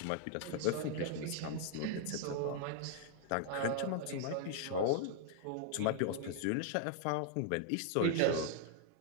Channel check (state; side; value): different; both; correlation 0.00